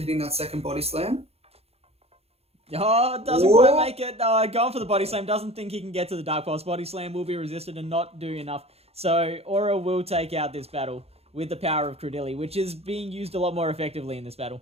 that second body slam. Oh, it doesn't quite make it. Going for the body slam. Doesn't think he can get to the Dark Pulse. Body slam will be resisted and not do enough. So Aura will take out this battle with the power of Cradilly, which is being used a lot more effectively in this battle.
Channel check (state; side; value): late; left; 0.29 ms